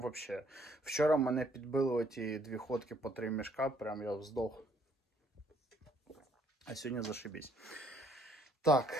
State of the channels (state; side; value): normal; both; correlation 0.65